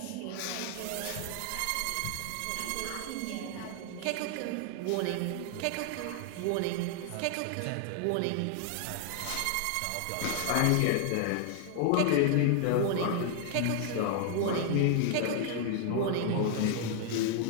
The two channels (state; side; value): different; both; correlation 0.00